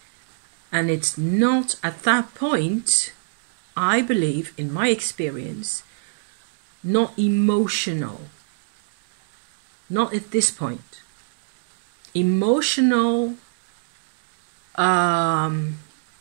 And it's not at that point, I believe, in my experience, not emotional. Not at this point. Emotional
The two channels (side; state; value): left; silent; digital silence